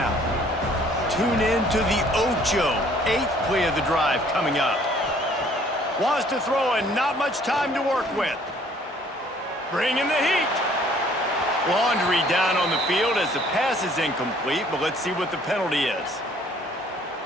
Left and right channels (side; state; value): both; normal; correlation 0.58